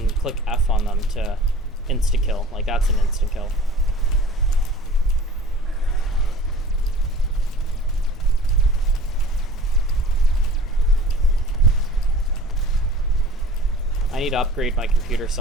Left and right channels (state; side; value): normal; both; correlation 0.44